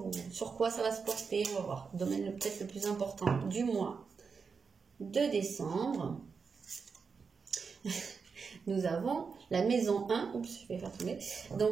sur quoi ça va se porter. On va voir, le domaine peut-être le plus important du mois de décembre. nous avons la maison 1. Oups, je vais faire tomber. Donc,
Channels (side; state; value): left; quieter; 5.4 dB